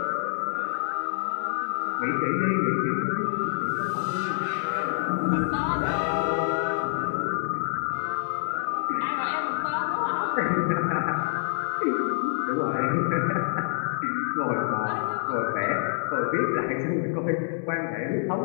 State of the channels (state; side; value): silent; right; digital silence